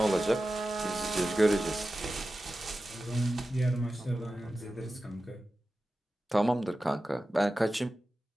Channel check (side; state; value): both; normal; correlation 0.94